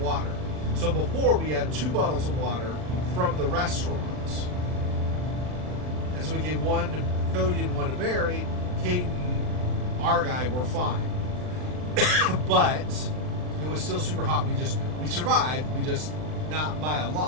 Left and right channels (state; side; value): late; left; 39 ms